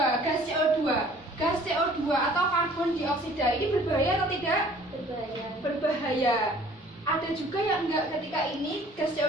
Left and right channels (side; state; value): both; normal; correlation 0.53